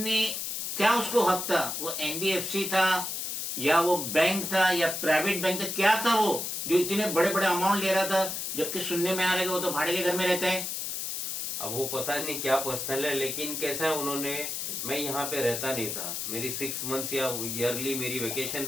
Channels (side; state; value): left; noise; hiss, 3 dB below the sound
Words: क्या, उसको हक था? वो एनबीएफसी था या वो बैंक था या प्राइवेट बैंक था? क्या था वो जो इतने बड़े बड़े अमाउंट ले रहा था, जबकि सुनने में आ रहा है कि वो तो भाड़े के घर में रहता है। अब वो पता नहीं क्या पर्सनल है, लेकिन कैसा है उन्होंने, मैं यहाँ पे रहता नहीं था, मेरी 6 मंथ्स या ईयरली मेरी वेकेशन